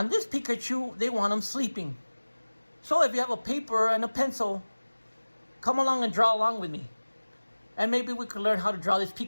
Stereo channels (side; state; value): both; inverted; correlation -1.00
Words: this Pikachu, they want him sleeping. So if you have a paper and a pencil, come along and draw along with me. And maybe we could learn how to draw this